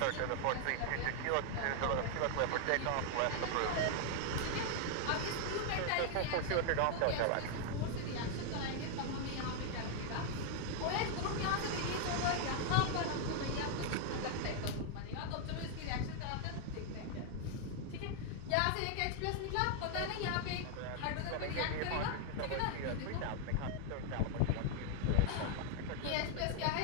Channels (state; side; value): different; both; correlation 0.00